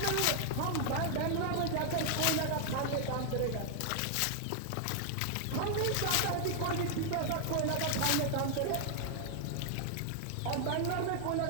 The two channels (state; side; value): different; both; correlation 0.00